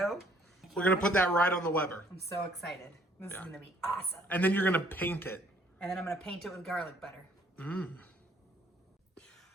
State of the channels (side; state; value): both; normal; correlation 0.62